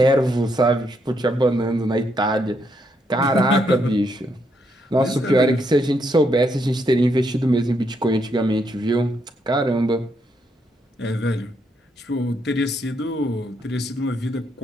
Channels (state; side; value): normal; both; correlation 0.77